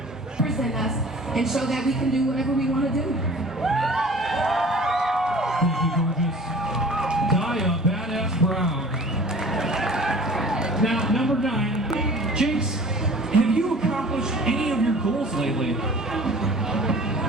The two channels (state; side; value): normal; both; correlation 0.45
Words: Present us and show that we can do whatever we want to do. Thank you, gorgeous. Daya Badass Brown. Now, number 9, Jinx, have you accomplished any of your goals lately?